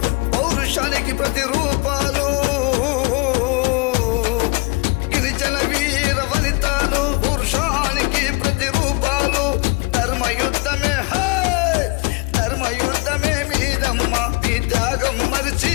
పౌరుషానికి ప్రతిరూపాలు, గిరిజన వీర వనితాలు పౌరుషానికి ప్రతిరూపాలు. ధర్మయుద్ధమే ధర్మయుద్ధమే మీదమ్మ, మీ త్యాగం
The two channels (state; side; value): quieter; right; 29.2 dB